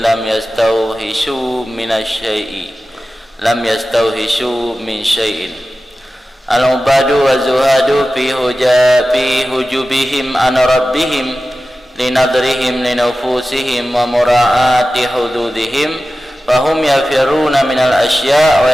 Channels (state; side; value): normal; both; correlation 0.95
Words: lam yastawhishu minasy-syai'i, lam yastawhishu min syai'in. Al-'ubadu waz-zuhadu fi hujubihim an rabbihim linadrihim linufusihim wa mura'ati hududihim fahum yafiruna minal asya' wa